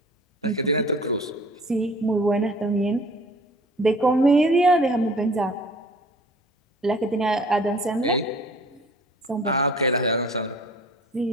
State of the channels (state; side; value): normal; both; correlation 0.48